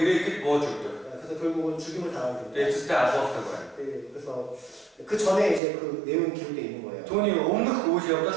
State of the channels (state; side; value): drops out; left; at 5.6 s